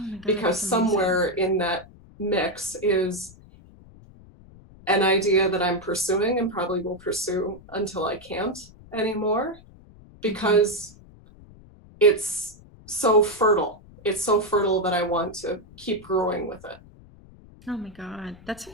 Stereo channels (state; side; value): noise; left; rumble, 22 dB below the sound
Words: my God, because that's amazing. somewhere in that mix is an idea that I'm pursuing and probably will pursue until I can't anymore, because it's so fertile. It's so fertile that I want to keep growing with it. Oh my God, that's